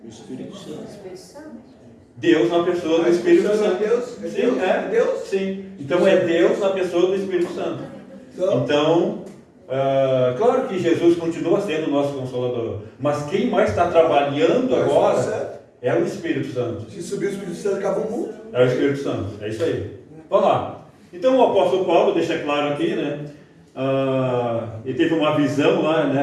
O Espírito Santo. Espírito Santo. Deus na pessoa do Espírito Santo. Deus? Sim, É Deus? Sim. Então é Deus na pessoa do Espírito Santo. Então, claro que Jesus continua sendo o nosso Consolador. Mas quem mais está trabalhando agora é o Espírito Santo. Se subir o Espírito Santo, acaba o mundo. É o Espírito Santo. É isso aí. Vamos lá. Então o apóstolo Paulo deixa claro aqui, né? Ele teve uma visão lá,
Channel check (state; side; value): identical; both; correlation 1.00